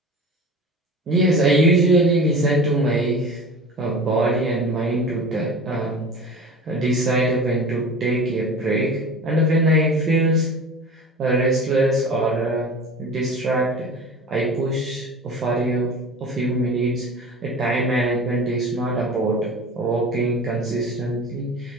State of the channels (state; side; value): normal; both; correlation 0.37